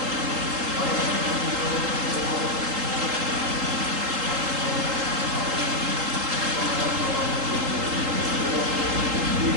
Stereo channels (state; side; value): late; left; 3.8 ms